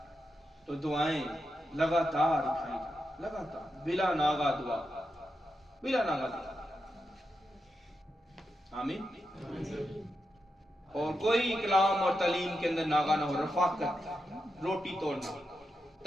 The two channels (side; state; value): both; normal; correlation 0.87